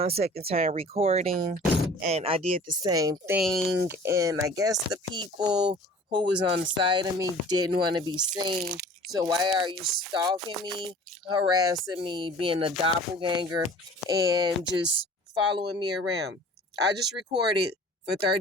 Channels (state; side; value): normal; both; correlation 0.46